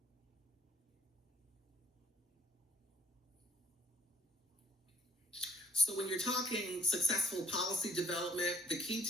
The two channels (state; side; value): normal; both; correlation 0.62